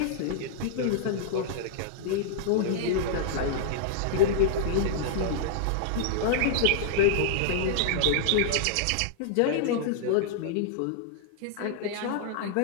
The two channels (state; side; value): different; both; correlation -0.01